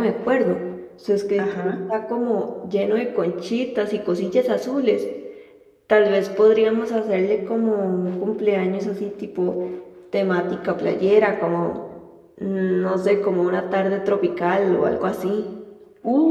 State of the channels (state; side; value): identical; both; correlation 1.00